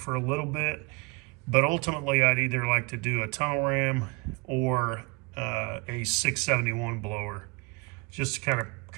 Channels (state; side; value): quieter; left; 27.9 dB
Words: a little bit, but ultimately I'd either like to do a tunnel ram or a 671 blower, just to kind of